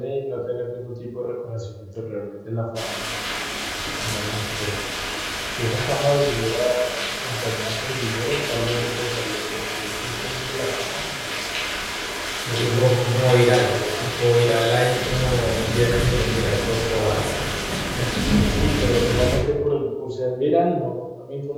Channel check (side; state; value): both; identical; correlation 1.00